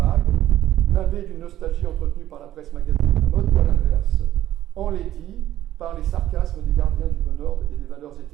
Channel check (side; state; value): left; quieter; 12.9 dB